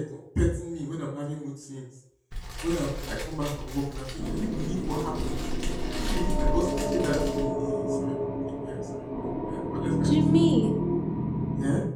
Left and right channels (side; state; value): both; identical; correlation 1.00